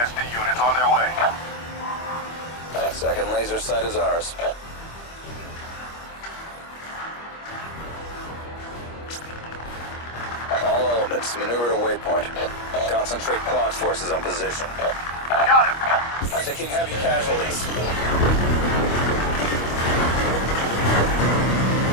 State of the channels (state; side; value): late; right; 25 ms